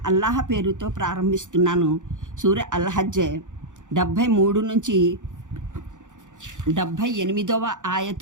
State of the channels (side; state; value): left; late; 0.86 ms